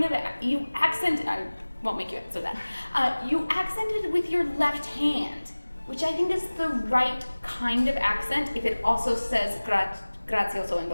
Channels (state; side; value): inverted; both; correlation -1.00